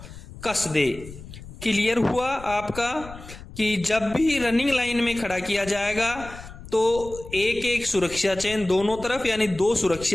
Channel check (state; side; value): noise; left; rumble, 15 dB below the sound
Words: कस दे। क्लियर हुआ आपका कि जब भी रनिंग लाइन में खड़ा किया जाएगा तो एक एक सुरक्षा चेन दोनों तरफ यानी 2